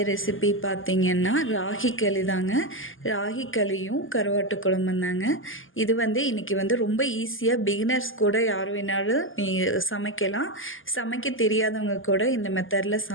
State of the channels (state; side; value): late; right; 0.58 ms